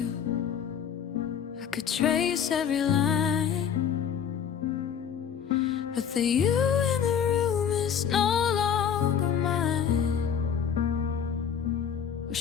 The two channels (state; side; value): quieter; right; 7.9 dB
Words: I could trace every line, but the you in the room is no longer mine. We're